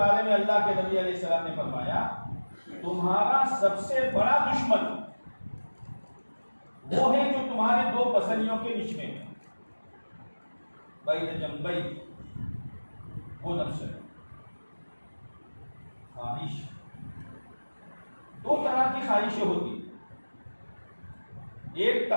میں اللہ کے نبی علیہ السلام نے فرمایا تمہارا سب سے بڑا دشمن وہ ہے جو تمہارے دو پسلیوں کے بیچ میں ہے، بین جنبی، وہ نفس ہے۔ خواہش، دو طرح کی خواہشیں ہوتی، ایک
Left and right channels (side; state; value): both; inverted; correlation -1.00